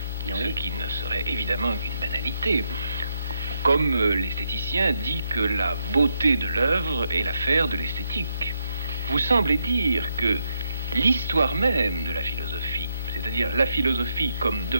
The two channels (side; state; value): both; inverted; correlation -0.80